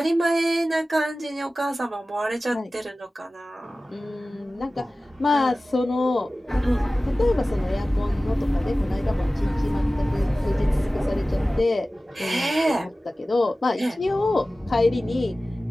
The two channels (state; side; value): normal; both; correlation 0.96